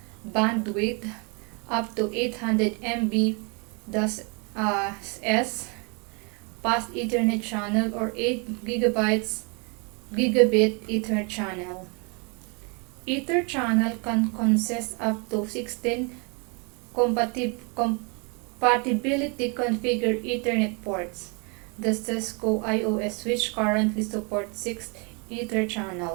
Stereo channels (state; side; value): quieter; left; 33.4 dB